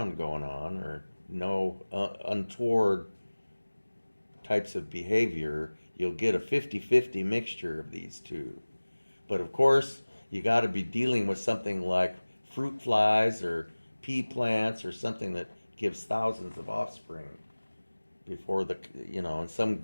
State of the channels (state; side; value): inverted; both; correlation -1.00